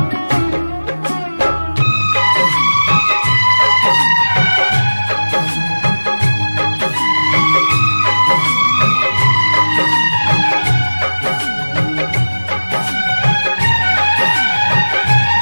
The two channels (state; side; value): inverted; both; correlation -1.00